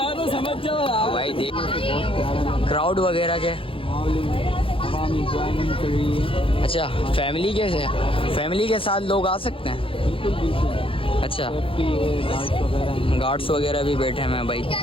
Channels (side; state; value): right; late; 0.26 ms